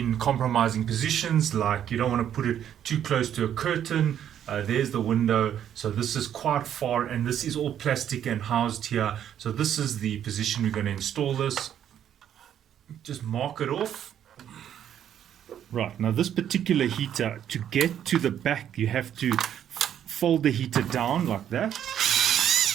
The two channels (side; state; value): left; quieter; 9.9 dB